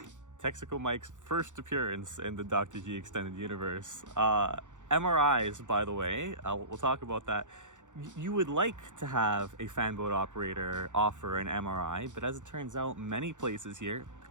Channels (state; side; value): late; left; 0.86 ms